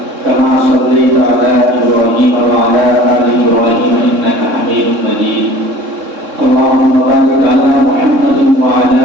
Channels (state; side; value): late; left; 3.6 ms